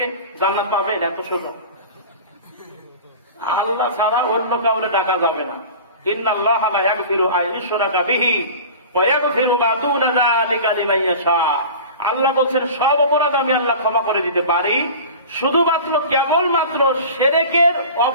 জান্নাত পাবেন, এত সোজা। আল্লাহ ছাড়া অন্য কাউরে ডাকা যাবে না। ইন্নাল্লাহা লা ইয়াগফিরু আন ইউশরাকা বিহি ওয়া ইয়াগফিরু মা দুনা যালিকা লিমান ইয়াশা। আল্লাহ বলছেন সব অপরাধ আমি আল্লাহ ক্ষমা করে দিতে পারি, শুধুমাত্র কেবলমাত্র শিরকের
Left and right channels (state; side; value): inverted; both; correlation -0.37